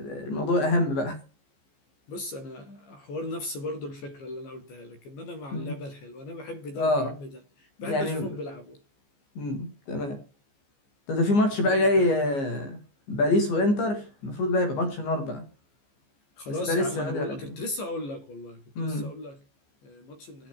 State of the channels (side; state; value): right; late; 15 ms